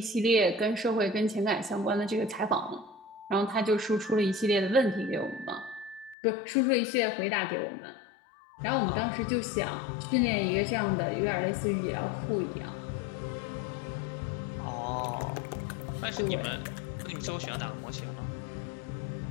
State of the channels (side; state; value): right; drops out; at 6.2 s